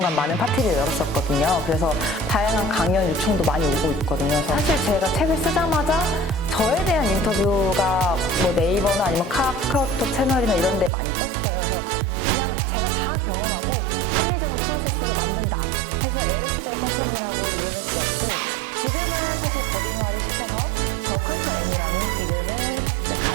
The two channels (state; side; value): drops out; left; at 10.9 s